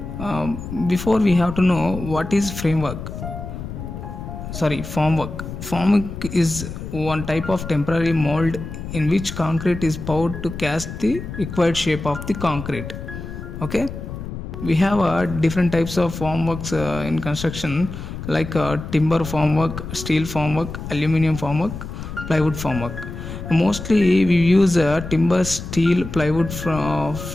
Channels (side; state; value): left; noise; rumble, 9 dB below the sound